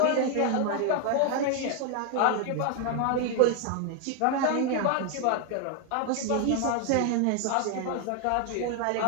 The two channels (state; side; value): different; both; correlation 0.00